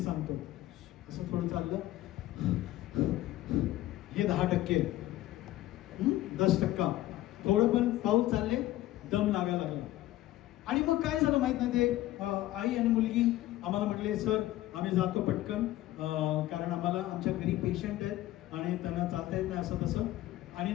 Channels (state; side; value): quieter; right; 15.4 dB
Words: असं थोडं चाललं हे 10%. 10% थोडं पण पाऊल चालले दम लागायला लागला. आणि मग काय झालं माहित नाही ते आई आणि मुलगी आम्हाला म्हटले सर आम्ही जातो पटकन कारण आम्हाला आमच्या घरी पेशंट आहेत आणि त्यांना चालता येत नाही असं तसं. आणि